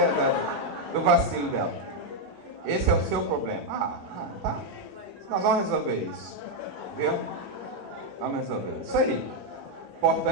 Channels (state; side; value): normal; both; correlation 0.01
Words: do vacilo dela. Esse é o seu problema. Tá. Nós vamos resolver isso. Viu? Vamos resolver isso aí. O